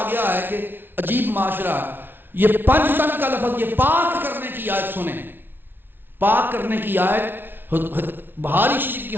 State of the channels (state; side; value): late; left; 0.10 ms